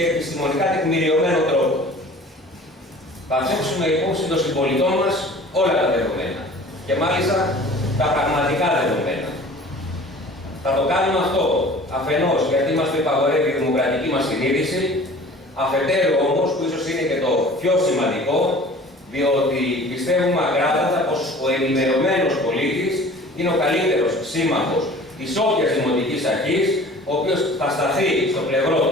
επιστημονικά τεκμηριωμένο τρόπο. Θα θέσουμε υπόψη των συμπολιτών μας όλα τα δεδομένα, και μάλιστα τα πραγματικά δεδομένα. Θα το κάνουμε αυτό αφενός γιατί μας το υπαγορεύει η δημοκρατική μας συνείδηση, αφετέρου όμως, που ίσως είναι και το πιο σημαντικό, διότι πιστεύουμε ακράδαντα πως ο ενημερωμένος πολίτης είναι ο καλύτερος σύμμαχος της όποιας δημοτικής αρχής, ο οποίος θα σταθεί στο πλευρό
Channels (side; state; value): both; normal; correlation 0.45